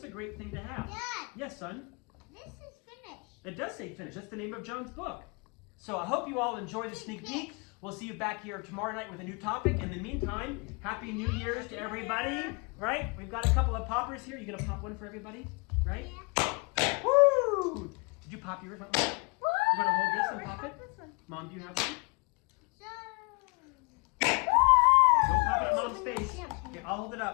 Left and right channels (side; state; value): right; quieter; 31.8 dB